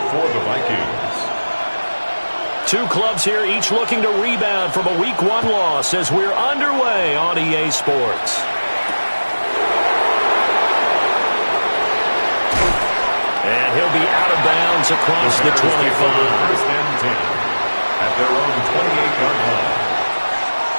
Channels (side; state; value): both; inverted; correlation -1.00